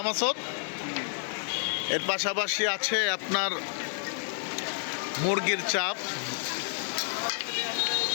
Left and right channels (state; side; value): silent; right; digital silence